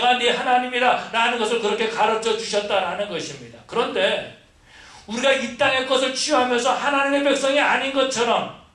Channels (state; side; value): identical; both; correlation 1.00